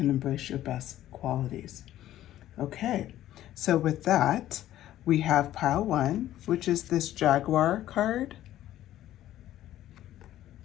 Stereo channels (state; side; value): quieter; right; 13.2 dB